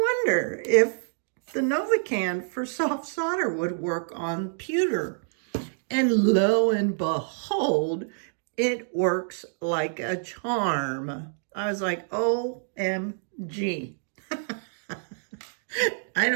if the Novacan for soft solder would work on pewter. And lo and behold, it works like a charm. I was like, OMG. I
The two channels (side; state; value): left; silent; digital silence